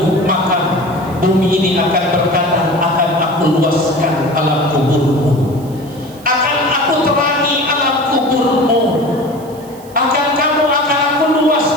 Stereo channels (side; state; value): right; noise; hiss, 23 dB below the sound